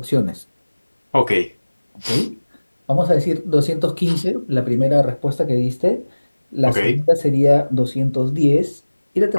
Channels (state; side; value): inverted; both; correlation -1.00